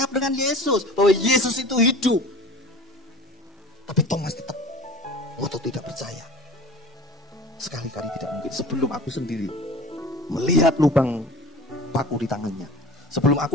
dengan Yesus, bahwa Yesus itu hidup. Tapi Thomas tetap ngotot tidak percaya. Sekali-kali tidak mungkin. Sebelum aku sendiri melihat lubang paku di tangannya, sebelum aku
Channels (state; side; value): normal; both; correlation 0.40